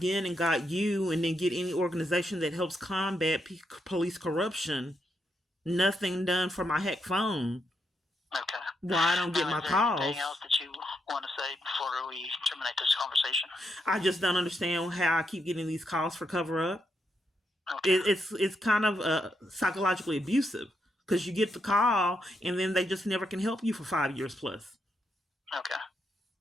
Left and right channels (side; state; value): both; normal; correlation 0.80